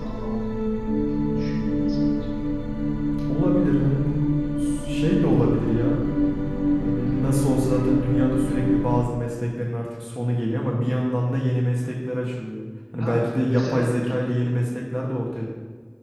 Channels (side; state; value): both; identical; correlation 1.00